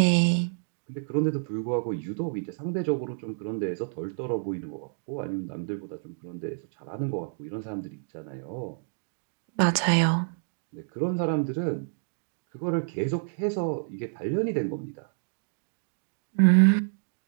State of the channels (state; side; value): silent; left; digital silence